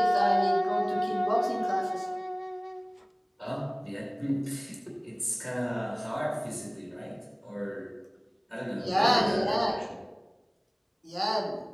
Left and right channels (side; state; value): both; identical; correlation 1.00